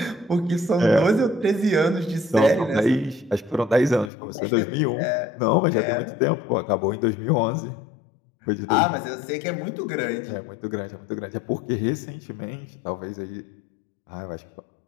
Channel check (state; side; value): drops out; right; at 4.1 s